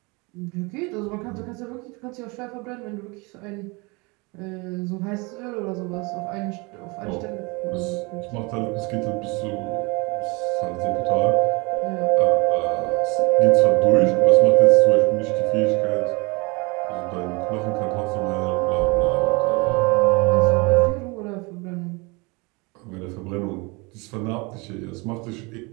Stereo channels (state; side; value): quieter; left; 27.5 dB